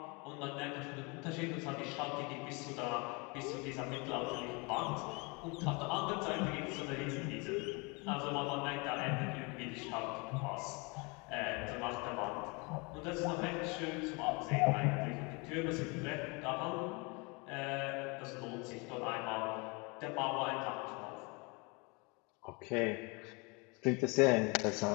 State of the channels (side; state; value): right; quieter; 29.4 dB